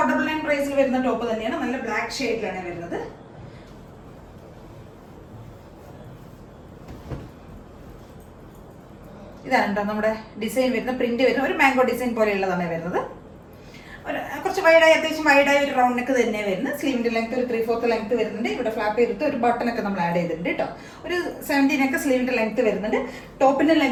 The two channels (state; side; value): identical; both; correlation 1.00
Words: പ്രൈസിൽ വരുന്ന ടോപ്പ് തന്നെയാണ്. നല്ല ബ്ലാക്ക് ഷെയ്ഡിലാണ് വരുന്നത്. ഇതാണ് കേട്ടോ നമ്മുടെ ഡിസൈൻ വരുന്ന, പ്രിന്റ് വരുന്ന ഒരു മാംഗോ ഡിസൈൻ പോലെയുള്ളതാണ് വരുന്നത്. ഒരു കുറച്ച് വൈഡായി, അത്യാവശ്യം വൈഡായി ഒരു റൗണ്ട് നെക്ക് തന്നെ വരുന്നത്. സ്ലീവിന്റെ ലെങ്ത് ഒരു 3/4 ലെങ്ത് വരുന്നുണ്ട്. ഇവിടെ ഫ്ലാപ്പ് ചെയ്തിട്ട് ഒരു ബട്ടണൊക്കെ നമ്മൾ ആഡ് ചെയ്തിട്ടുണ്ട് കേട്ടോ. ഒരു 17 ഒക്കെ സ്ലീവിന്റെ ലെങ്ത് വരുന്നുണ്ട്. ടോപ്പിന്റെ